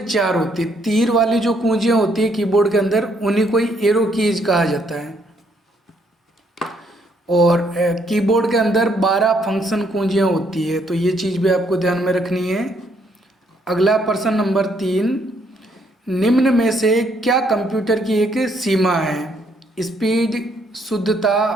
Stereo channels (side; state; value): both; normal; correlation 0.70